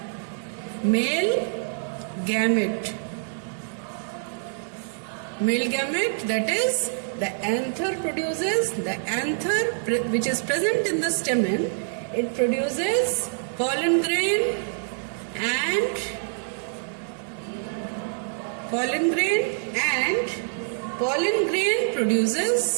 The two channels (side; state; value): left; silent; digital silence